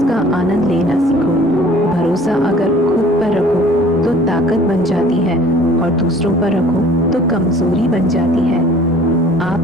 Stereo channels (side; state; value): both; normal; correlation 0.51